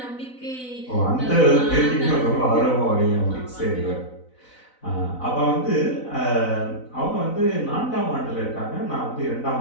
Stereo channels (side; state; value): right; late; 4.0 ms